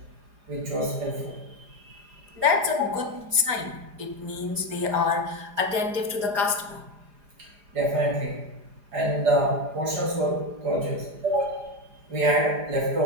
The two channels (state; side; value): late; left; 4.9 ms